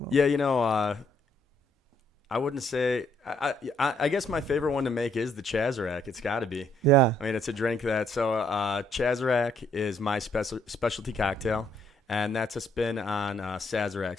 know. Yeah, I wouldn't say. I guess my favorite one to make is the Chazz. It's got to be. Yeah. I mean, it's a drink that. So Chazz is my specialty cocktail, and that's a spin on Sazerac.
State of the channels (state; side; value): normal; both; correlation 0.69